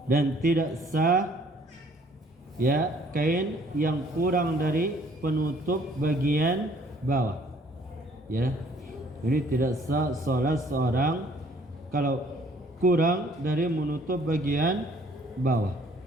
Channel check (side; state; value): both; normal; correlation 0.59